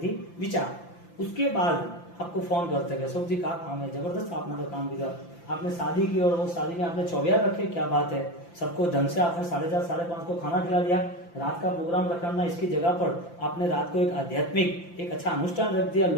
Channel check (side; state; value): right; late; 5.8 ms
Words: विचार, उसके बाद आपको फोन करते गए, सब जी का काम है, जबरदस्त आपने तो काम किया, आपने शादी की और वो शादी में आपने 24 रखे, क्या बात है, सबको ढंग से आपने 4:30 5:30 को खाना खिला दिया, रात का प्रोग्राम रखना, इसकी जगह पर आपने रात को एक आध्यात्मिक एक अच्छा अनुष्ठान रख दिया,